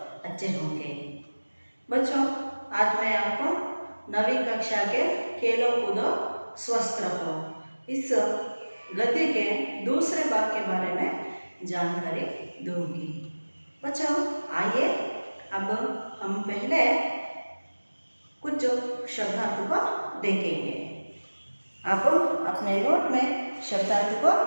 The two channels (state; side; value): inverted; both; correlation -1.00